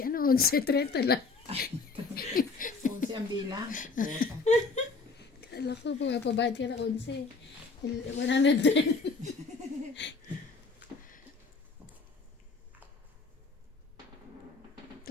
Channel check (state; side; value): quieter; right; 4.2 dB